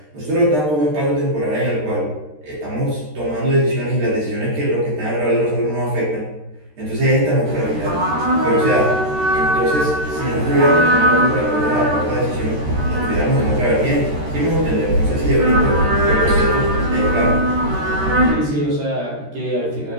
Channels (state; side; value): late; left; 13 ms